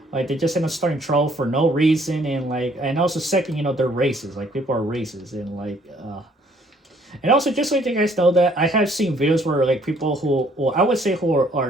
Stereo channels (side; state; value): both; normal; correlation 0.62